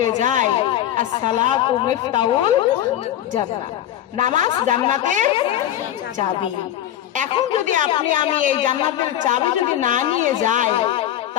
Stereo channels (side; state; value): right; quieter; 11.9 dB